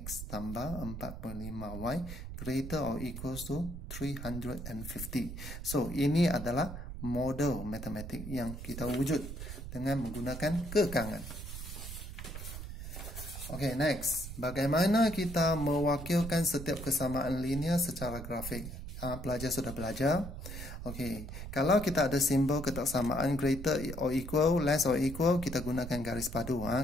tambah 45y greater or equals to 350. So, ini adalah model matematik yang kita wujud dengan menggunakan kekangan. Okay, next. Bagaimana kita mewakilkan setiap kesamaan linear secara grafik? Pelajar sudah belajar. Okay, kalau kita ada simbol ketaksamaan greater or equal, less or equal, kita gunakan garis padu.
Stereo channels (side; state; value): right; noise; rumble, 9 dB below the sound